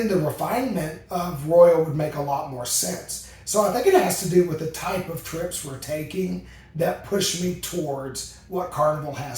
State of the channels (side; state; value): both; identical; correlation 1.00